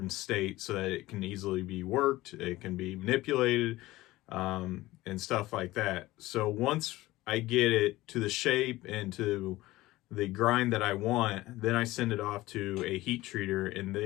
state so that it can easily be worked, it can be manipulated, and stuff like that. So once I get it to the shape and to the grind that I want, then I send it off to a heat treater and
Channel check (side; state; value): right; quieter; 17.9 dB